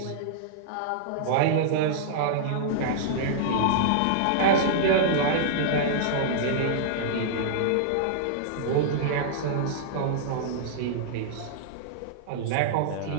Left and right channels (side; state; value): both; different; correlation -0.02